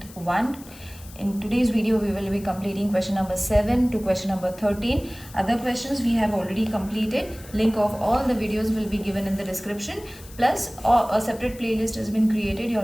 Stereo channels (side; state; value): left; noise; hiss, 20 dB below the sound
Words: 1. In today's video we will be completing question number 7 to question number 13. Other questions we have already completed. Link of all the videos will be given in the description. Plus a separate playlist has been created. You